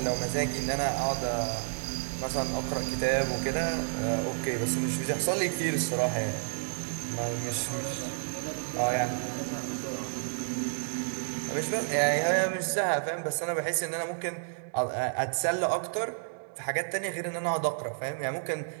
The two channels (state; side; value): silent; left; digital silence